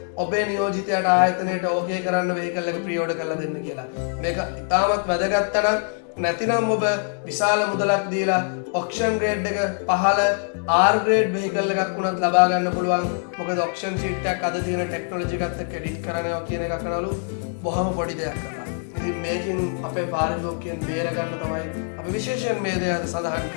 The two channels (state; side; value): silent; right; 58 dB below the other